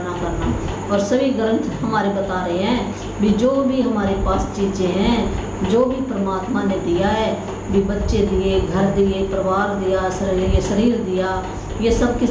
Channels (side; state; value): both; identical; correlation 1.00